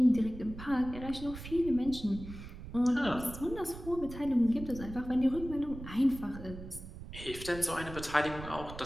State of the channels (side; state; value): right; noise; rumble, 12 dB below the sound